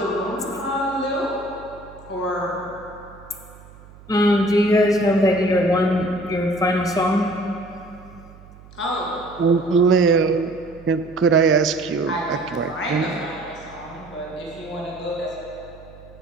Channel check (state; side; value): noise; right; hum, 21 dB below the sound